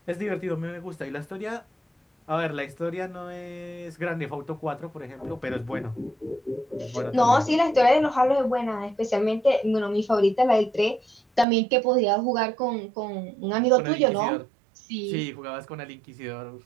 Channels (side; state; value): left; drops out; at 11.5 s